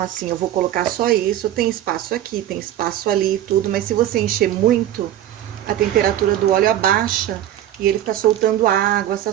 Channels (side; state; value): left; quieter; 12.2 dB